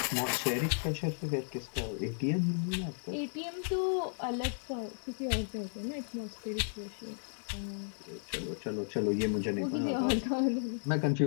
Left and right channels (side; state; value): right; silent; digital silence